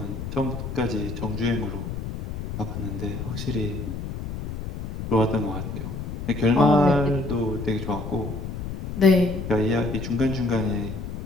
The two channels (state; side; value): noise; left; rumble, 6 dB below the sound